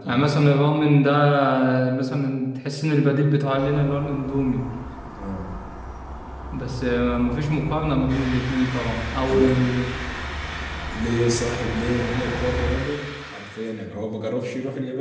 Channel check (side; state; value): both; identical; correlation 1.00